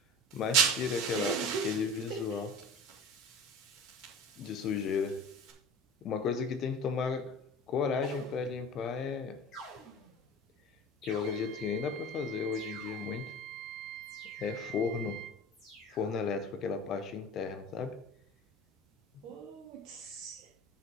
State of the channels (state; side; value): normal; both; correlation 0.37